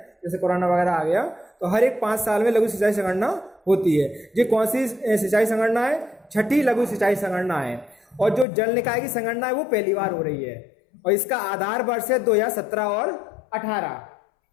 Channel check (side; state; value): right; drops out; at 8.5 s